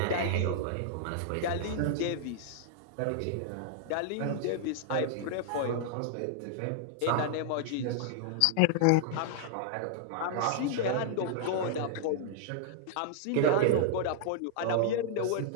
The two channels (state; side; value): different; both; correlation -0.01